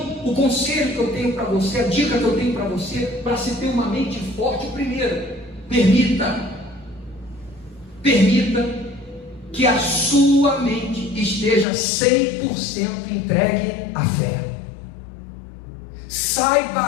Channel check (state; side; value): drops out; right; at 11.7 s